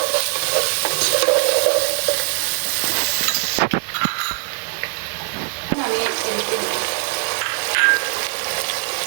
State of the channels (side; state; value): left; silent; digital silence